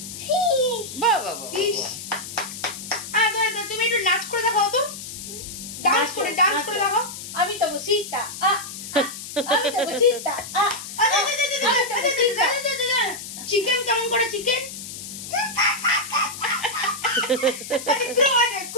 বাহ বাহ বাহ ফিশ তুমি একটু নাচ করে দেখাও তো ডান্স করে দেখাও আমি তো বসিতা আমি তো বসিতা চিকেন কেমন করে চিকেন?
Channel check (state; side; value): noise; left; hiss, 10 dB below the sound